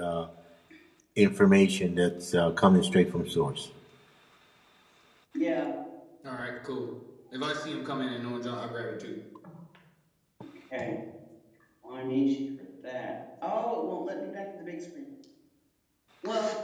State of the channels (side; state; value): both; identical; correlation 1.00